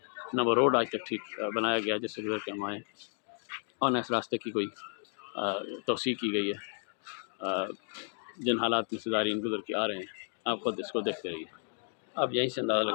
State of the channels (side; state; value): right; silent; 56 dB below the other